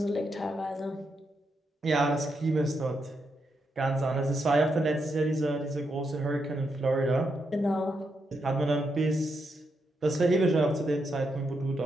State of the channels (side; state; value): both; normal; correlation 0.82